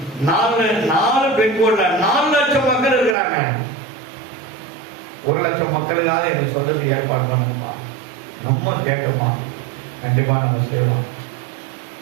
பின்கோட்ல 4,00,000 மக்கள் இருக்கிறாங்க. 1,00,000 மக்களுக்காக எனக்கு சொல்றதுக்கு ஏற்பாடு பண்ணுங்கப்பா. நம்ம கேட்கணுமா? கண்டிப்பா நம்ம செய்வோம்.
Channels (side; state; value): left; drops out; at 3.2 s